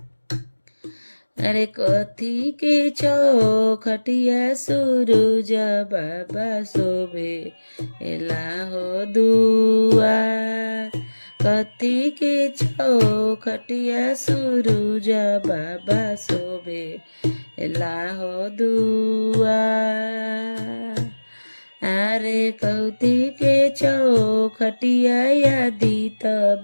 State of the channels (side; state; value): both; inverted; correlation -1.00